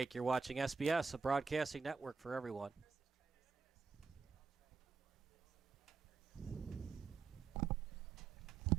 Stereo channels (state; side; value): quieter; left; 5.2 dB